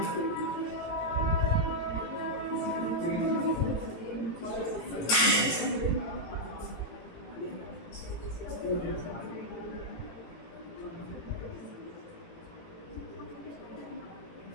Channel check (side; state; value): right; late; 18 ms